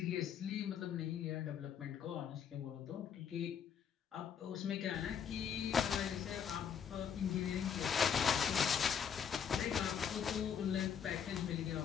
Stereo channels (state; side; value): quieter; right; 7.7 dB